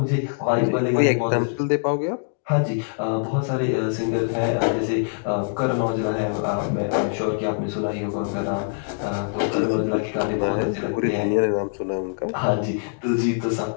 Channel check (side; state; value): right; silent; 63 dB below the other